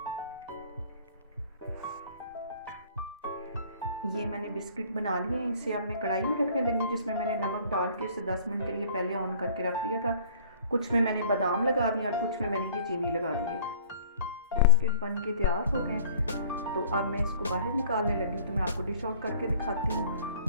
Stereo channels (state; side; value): inverted; both; correlation -0.51